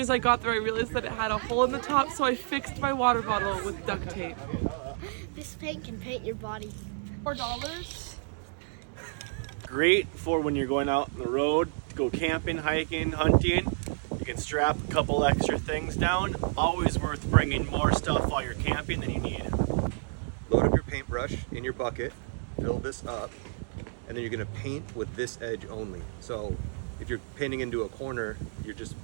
as I got there, I realized that it had a hole in the top, so I fixed my water bottle with duct tape. This paint can paint your body. $4. Great for when you're going out on the road to go camping, hiking, hunting. You can strap a couple extra things down. Always worth bringing more stuff while you're camping than you need. Load up your paintbrush in your bucket, fill this up, and then you're gonna paint with this edge only. So if you're painting into a corner, you're just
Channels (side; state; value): left; silent; digital silence